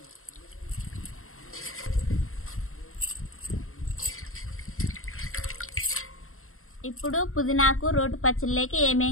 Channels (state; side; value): late; right; 0.62 ms